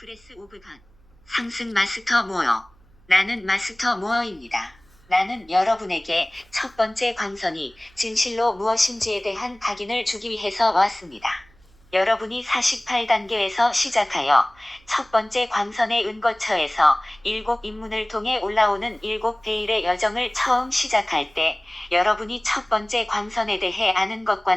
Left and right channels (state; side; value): noise; right; hum, 30 dB below the sound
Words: 오브 갓. 상승 마스터 모어. 나는 마스터 모어입니다. 나는 여러분에게 첫 번째 광선이 진실로 무엇인지에 대한 각인을 주기 위해서 왔습니다. 여러분이 48단계에서 시작하여 첫 번째 광선의 은거처에서 7입문을 통해 올라오는 7베일의 여정을 처음 시작할 때 여러분이 첫 번째 광선에 대해 아는